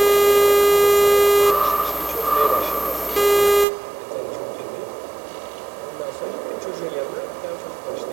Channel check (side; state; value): left; drops out; at 3.7 s